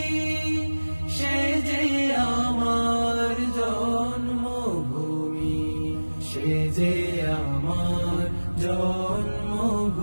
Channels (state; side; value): inverted; both; correlation -1.00